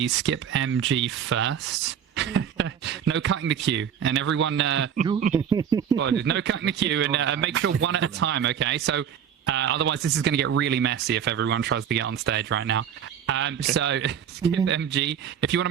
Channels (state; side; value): quieter; left; 8.6 dB